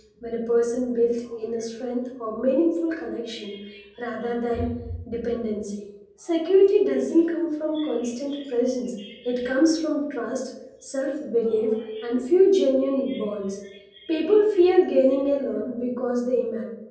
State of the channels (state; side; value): identical; both; correlation 1.00